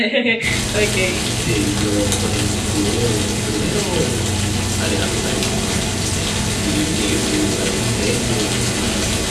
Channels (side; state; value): both; identical; correlation 1.00